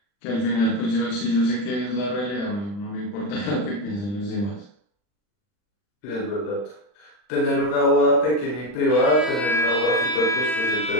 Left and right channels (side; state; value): right; late; 40 ms